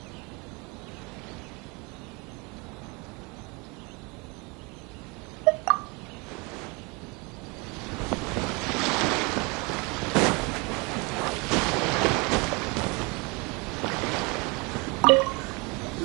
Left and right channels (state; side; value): quieter; left; 28.4 dB